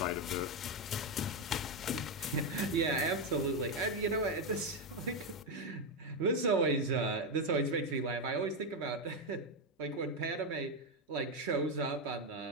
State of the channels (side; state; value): both; normal; correlation 0.06